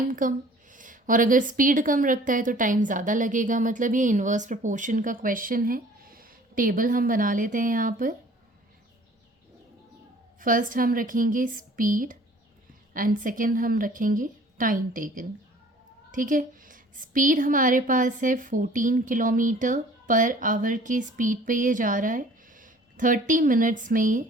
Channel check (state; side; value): normal; both; correlation 0.51